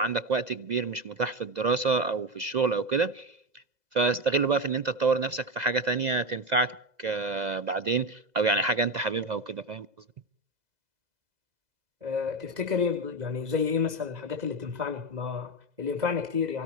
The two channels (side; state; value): left; late; 2.0 ms